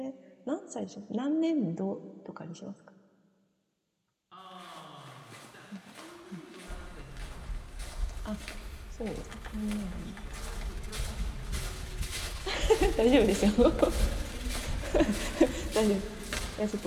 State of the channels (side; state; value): both; identical; correlation 1.00